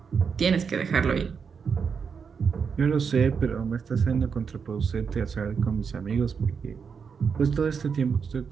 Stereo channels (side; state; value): left; quieter; 6.1 dB